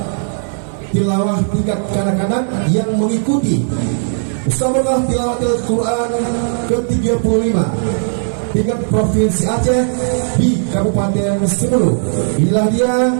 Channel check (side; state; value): left; silent; 69 dB below the other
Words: tilawah tingkat kanak-kanak yang mengikuti Musabaqah Tilawatil Quran ke-35 tingkat Provinsi Aceh di Kabupaten Semeru. Inilah dia